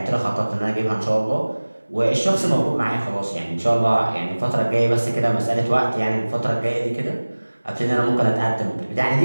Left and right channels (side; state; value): both; inverted; correlation -1.00